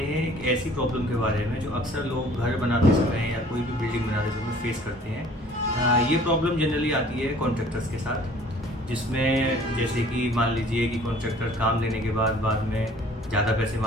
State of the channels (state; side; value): normal; both; correlation 0.52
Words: हैं एक ऐसी प्रॉब्लम के बारे में जो अक्सर लोग घर बनाते समय या कोई भी बिल्डिंग बनाते समय फेस करते हैं। ये प्रॉब्लम जनरली आती है कॉन्ट्रैक्टर्स के साथ, जिसमें जैसे कि मान लीजिए कि कॉन्ट्रैक्टर काम देने के बाद में ज़्यादा पैसे